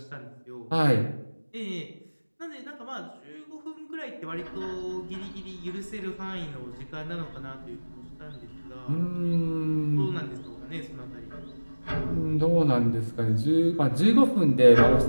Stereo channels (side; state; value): both; inverted; correlation -1.00